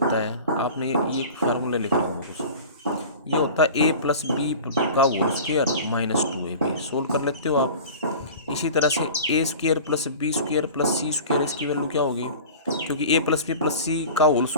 है, आपने ये फार्मूला लिख रहा हूँ कुछ, ये होता है a प्लस बी का होल स्क्वायर -2ab, सोल्व कर लेते हो आप। इसी तरह से a² plus b² plus c², इसकी वैल्यू क्या होगी, क्योंकि a plus b plus c का होल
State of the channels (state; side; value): inverted; both; correlation -0.37